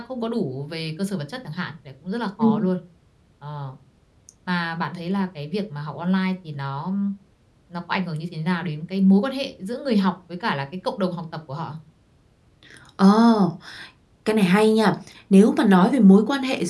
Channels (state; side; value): identical; both; correlation 1.00